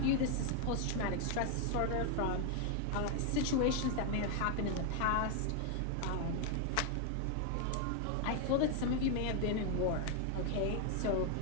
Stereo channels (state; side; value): different; both; correlation 0.00